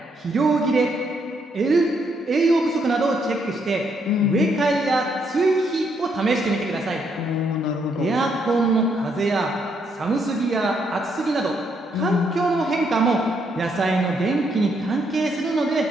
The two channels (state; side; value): normal; both; correlation 0.74